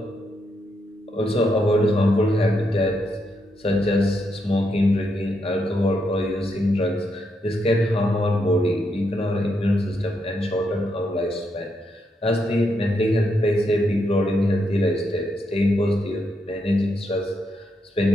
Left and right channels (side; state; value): both; normal; correlation 0.80